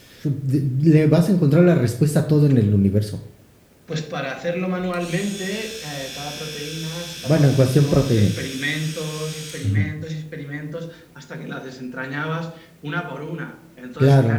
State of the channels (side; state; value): both; identical; correlation 1.00